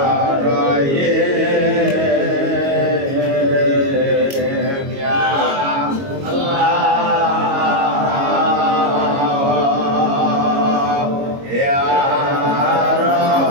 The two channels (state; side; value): late; left; 22 ms